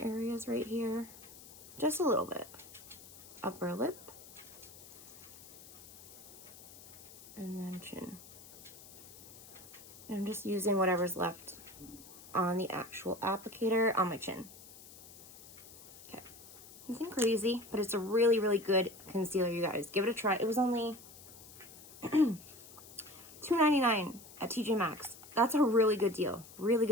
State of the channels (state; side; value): noise; left; hiss, 18 dB below the sound